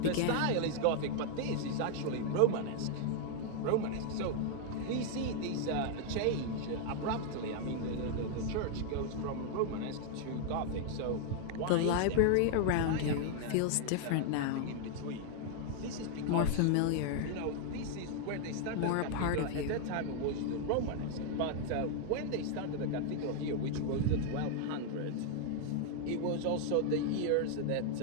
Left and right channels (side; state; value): both; different; correlation 0.00